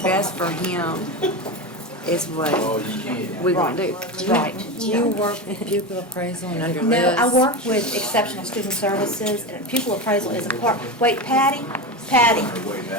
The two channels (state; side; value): normal; both; correlation 0.20